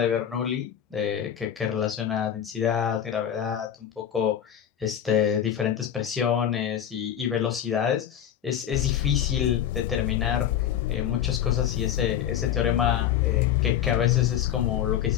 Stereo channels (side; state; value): right; quieter; 9.9 dB